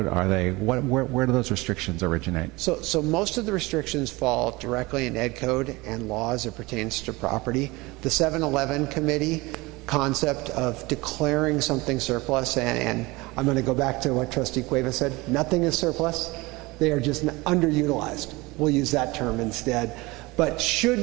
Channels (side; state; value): left; quieter; 22.7 dB